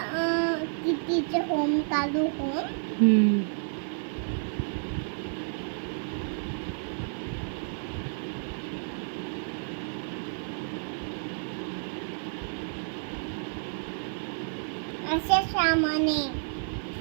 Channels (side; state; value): left; silent; digital silence